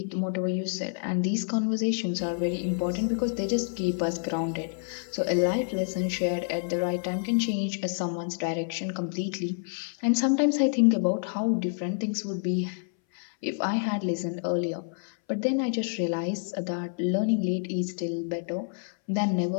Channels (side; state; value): right; silent; 59 dB below the other